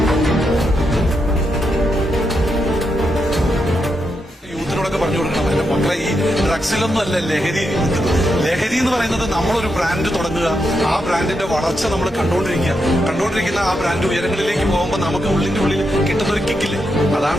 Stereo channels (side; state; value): both; normal; correlation 0.83